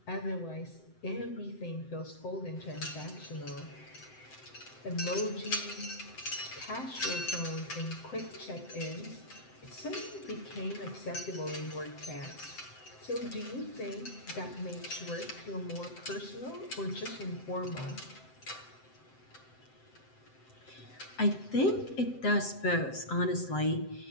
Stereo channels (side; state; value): right; late; 7.8 ms